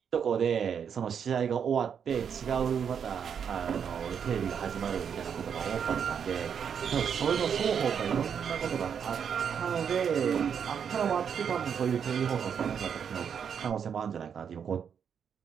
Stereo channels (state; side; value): quieter; left; 7.5 dB